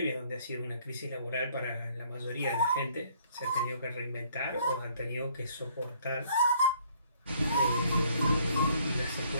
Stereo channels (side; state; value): both; inverted; correlation -0.63